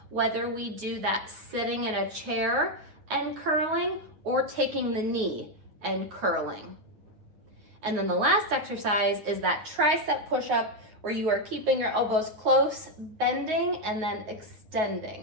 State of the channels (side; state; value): left; late; 9.4 ms